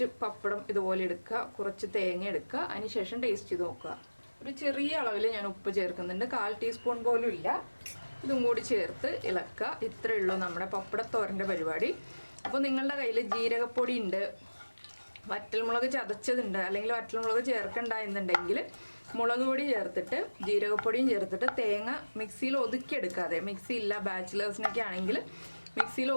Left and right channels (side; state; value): both; inverted; correlation -1.00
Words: പപ്പടം ഇതുപോലെ എടുക്കുക, കുറച്ച് തേങ്ങ എടുക്കുക, അതിനുശേഷം ടേസ്റ്റ് ചെയ്ത് നോക്കുക. ഒരു ചെറിയ അളവിൽ ഞാൻ ഉപ്പ് ചേർക്കുന്നുണ്ട്, 1/4 ടീസ്പൂൺ പോലും ഇല്ല. ഇതും കൂടി ചേർത്ത് ഇളക്കുക. ഇത്രയേ ഉള്ളൂ നമ്മുടെ പപ്പടത്തോരൻ്റെ പരിപാടി. അപ്പോൾ നിങ്ങളുടെ കയ്യിൽ ജീരകപ്പൊടി ഉണ്ട്, വറ്റൽമുളക് ചതച്ചതുണ്ട്, അല്ലെങ്കിൽ വറ്റൽമുളക് ചേർക്കണ്ട എന്നുണ്ടെങ്കിൽ മുളക് പൊടി ചേർത്തിട്ട് ജീരകപ്പൊടിയും ചേർത്തിട്ട് തേങ്ങ മിക്സിയിൽ ഒതുക്കിയെടുക്കാതെ, മിക്സി ഇല്ല ബാച്ചിലേഴ്സിനൊക്കെ ആണെങ്കിൽ മിക്സിയിൽ